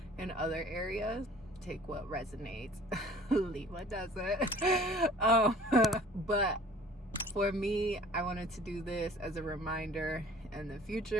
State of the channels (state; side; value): normal; both; correlation 0.50